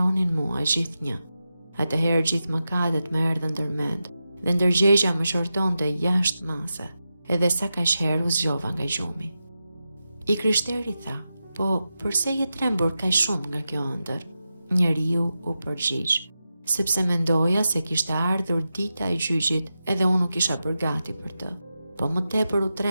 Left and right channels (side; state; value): both; inverted; correlation -0.90